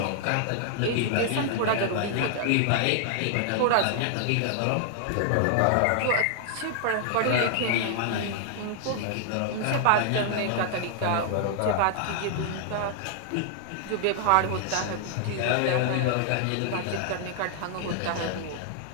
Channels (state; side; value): different; both; correlation 0.00